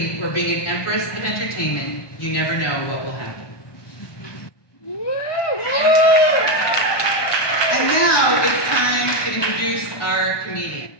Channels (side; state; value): right; late; 1.2 ms